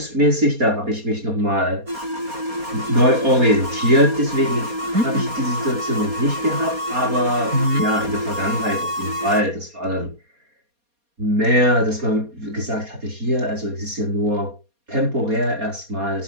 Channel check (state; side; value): late; left; 4.2 ms